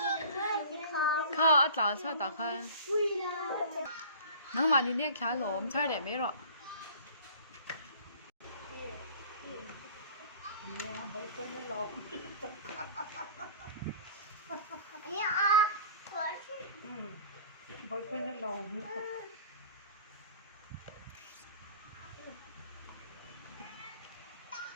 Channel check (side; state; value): both; inverted; correlation -0.44